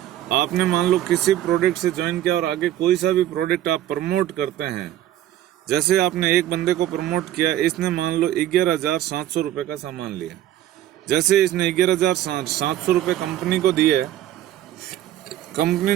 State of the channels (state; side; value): quieter; left; 12.8 dB